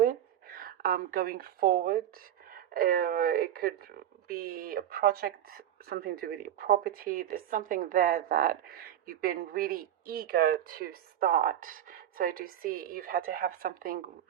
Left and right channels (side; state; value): left; quieter; 11.1 dB